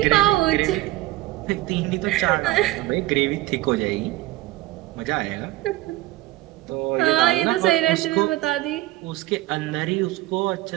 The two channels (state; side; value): quieter; left; 17.5 dB